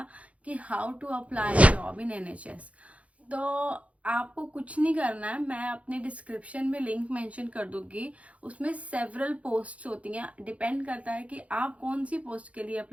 कि how to apply job in NHS. तो आपको कुछ नहीं करना है, मैं अपने डिस्क्रिप्शन में लिंक मेंशन कर दूंगी। उसमें सेवरल पोस्ट्स होती हैं, डिपेंड करता है कि आप कौन सी पोस्ट के लिए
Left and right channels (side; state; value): left; late; 0.065 ms